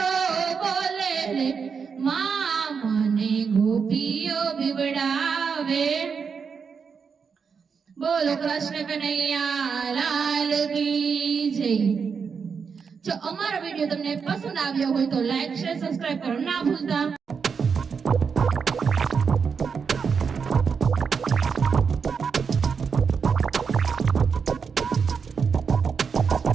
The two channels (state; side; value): quieter; left; 6.0 dB